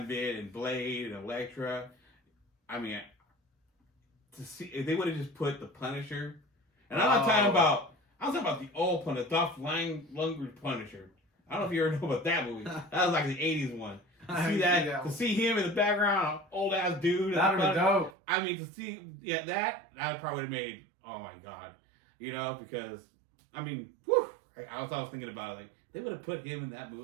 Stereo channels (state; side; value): drops out; left; at 18.1 s